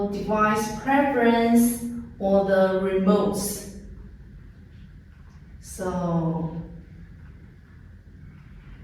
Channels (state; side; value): identical; both; correlation 1.00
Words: device preference or the remotes. So